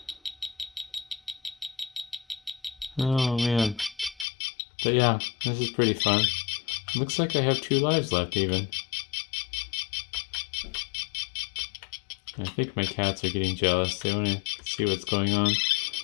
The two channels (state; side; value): drops out; right; at 4.2 s